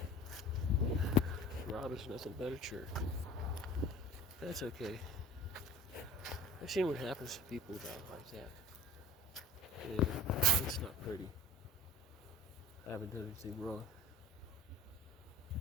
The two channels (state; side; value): normal; both; correlation 0.42